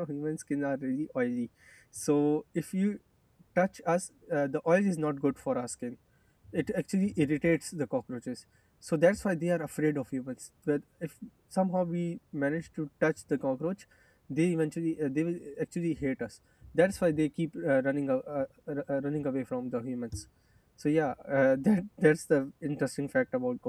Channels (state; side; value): identical; both; correlation 1.00